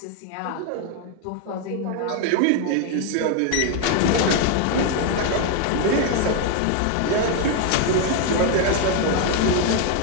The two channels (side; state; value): both; different; correlation 0.01